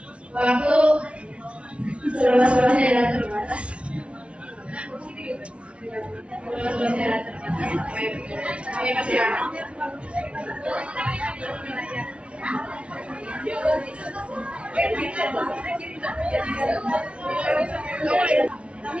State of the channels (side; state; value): left; late; 0.060 ms